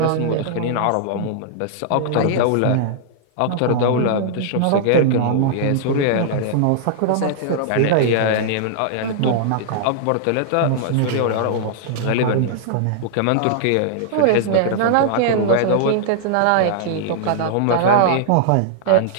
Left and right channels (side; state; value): both; different; correlation -0.01